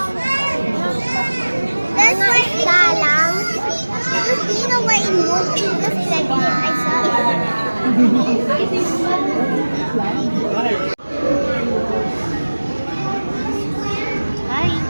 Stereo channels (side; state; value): both; inverted; correlation -1.00